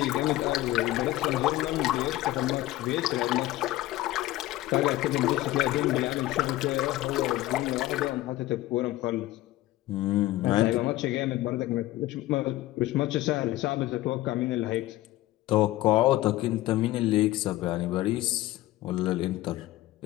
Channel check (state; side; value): quieter; right; 16.4 dB